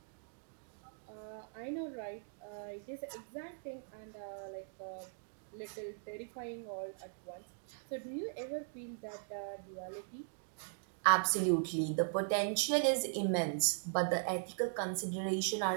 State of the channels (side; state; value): left; silent; digital silence